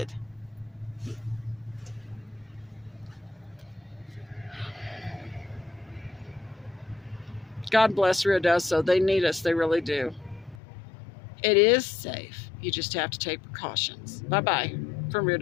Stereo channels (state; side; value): drops out; right; at 10.6 s